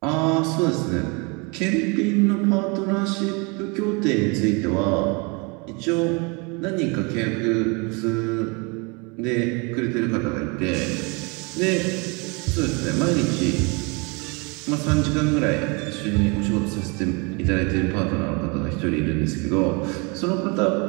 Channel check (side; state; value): left; quieter; 30.4 dB